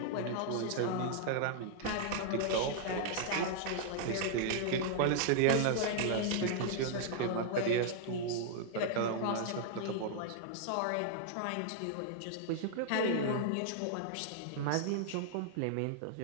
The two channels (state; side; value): different; both; correlation -0.01